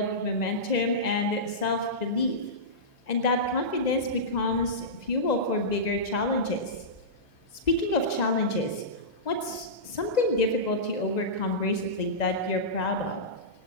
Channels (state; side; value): late; right; 2.0 ms